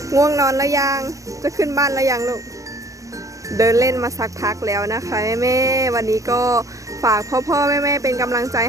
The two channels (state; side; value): late; left; 0.16 ms